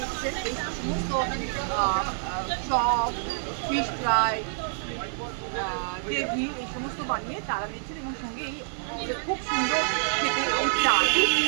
এই সমস্ত চপ, ফিশ ফ্রাই, গ্রেভি, এই সমস্ত বানিয়ে তারা দিচ্ছেন। এবং সঙ্গে এই খুব সুন্দর খেতে এই চা, দুধ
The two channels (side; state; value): left; silent; digital silence